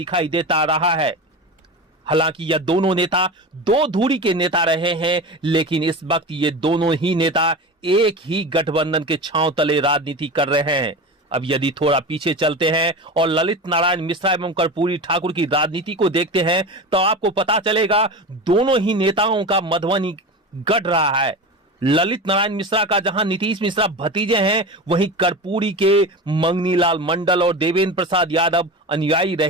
देता रहा है। हालांकि यह दोनों नेता दो धुरी के नेता रहे हैं, लेकिन इस वक्त ये दोनों ही नेता एक ही गठबंधन के छांव तले राजनीति कर रहे हैं। अब यदि थोड़ा पीछे चलते हैं और ललित नारायण मिश्रा एवं कर्पूरी ठाकुर की राजनीति को देखते हैं, तो आपको पता चलेगा दोनों ही नेताओं का मधुबनी गढ़ रहा है। ललित नारायण मिश्रा का जहां नीतीश मिश्रा भतीजे हैं, वहीं कर्पूरी के मंगनीलाल मंडल और देवेंद्र प्रसाद यादव अनुयायी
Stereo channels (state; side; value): normal; both; correlation 0.27